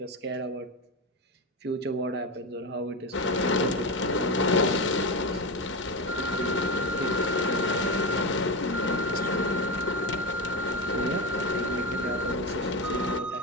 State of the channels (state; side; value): normal; both; correlation 0.17